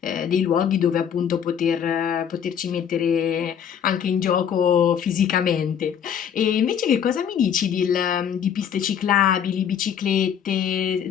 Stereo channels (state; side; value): quieter; right; 8.4 dB